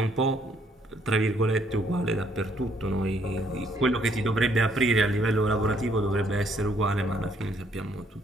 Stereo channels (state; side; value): normal; both; correlation 0.67